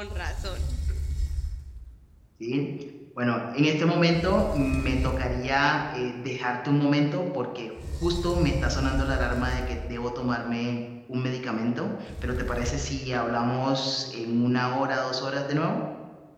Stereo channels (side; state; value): both; identical; correlation 1.00